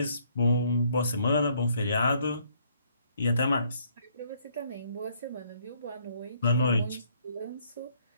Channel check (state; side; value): inverted; both; correlation -0.67